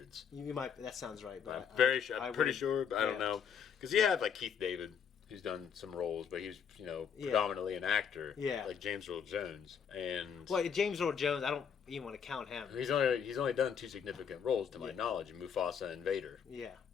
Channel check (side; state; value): right; quieter; 7.4 dB